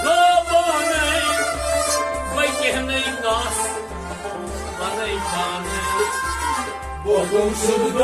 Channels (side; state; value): both; identical; correlation 1.00